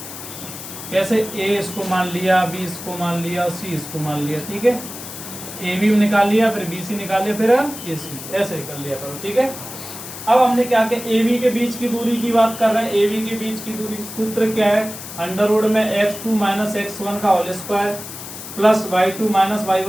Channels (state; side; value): noise; left; hiss, 11 dB below the sound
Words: कैसे ए इसको मान लिया, बी इसको मान लिया और सी इसको मान लिया, ठीक है। ए बी निकाल लिया, फिर बी सी निकाल लिया, फिर ए सी, ऐसे कर लिया करो, ठीक है। अब हमने क्या किया, ए बी के बीच की दूरी की बात कर रहे हैं। ए बी के बीच की दूरी सूत्र क्या है, अंडर रूट में x2 - x1 का whole square plus y2 -